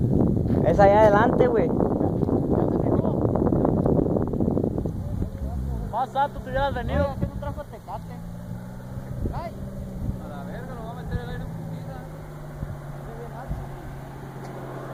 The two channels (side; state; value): both; identical; correlation 1.00